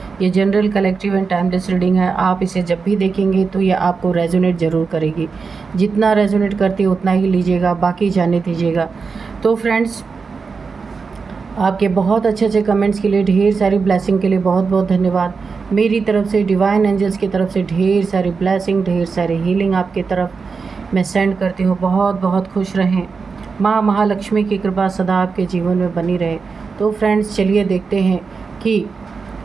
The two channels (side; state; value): left; quieter; 5.0 dB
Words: ये general, collective and timeless reading है। आप इसे जब भी देखेंगे तो ये आपको रेजोनेट ज़रूर करेगी। जितना रेजोनेट करती है उतना ही लीजिएगा, बाकी जाने दीजिएगा। तो फ्रेंड्स, आपके बहुत अच्छे अच्छे कमेंट्स के लिए, ढेर सारी ब्लेसिंग के लिए बहुत बहुत धन्यवाद। मेरी तरफ से, डिवाइन एंजल्स की तरफ से ढेर सारी ब्लेसिंग, ढेर सारी हीलिंग आपकी तरफ मैं सेंड करती हूँ। बहुत बहुत खुश रहें। माँ महालक्ष्मी की कृपा सदा आपके जीवन में बनी रहे। तो फ्रेंड्स, चलिए देखते हैं कि